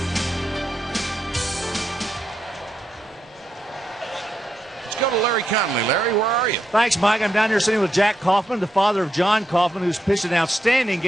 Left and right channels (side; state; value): both; normal; correlation 0.83